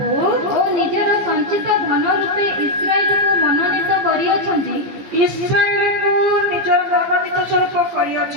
ଓ ନିଜର ସଞ୍ଚିତ ଧନ ରୂପେ ଇସ୍ରାଏଲକୁ ମନୋନୀତ କରିଅଛନ୍ତି, ଇସ୍ରାଏଲକୁ ନିଜର ମନୋନୀତ ସ୍ୱରୂପ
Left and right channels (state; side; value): late; left; 15 ms